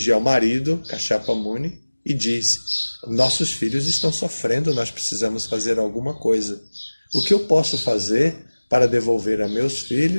ao marido, Kashyapa Muni, e diz, nossos filhos estão sofrendo, nós precisamos fazer alguma coisa. O que eu posso fazer para devolver a meus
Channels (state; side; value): inverted; both; correlation -1.00